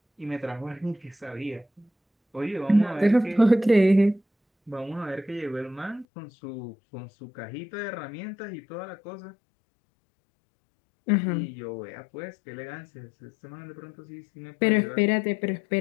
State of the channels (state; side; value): drops out; right; at 6.1 s